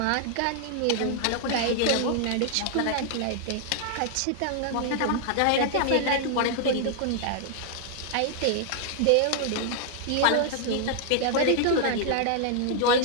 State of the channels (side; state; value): both; different; correlation 0.00